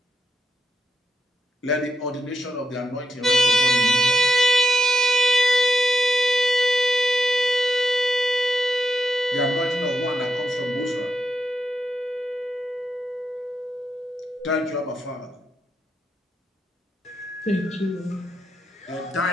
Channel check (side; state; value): both; normal; correlation 0.80